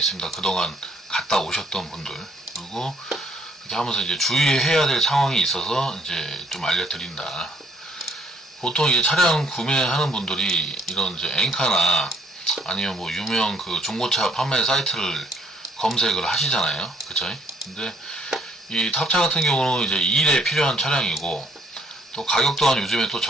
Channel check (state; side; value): normal; both; correlation 0.65